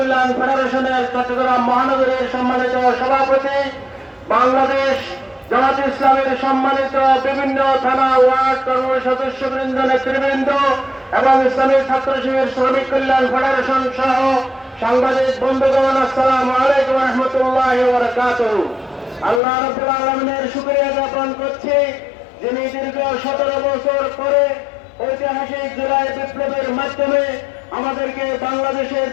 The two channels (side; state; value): right; drops out; at 19.4 s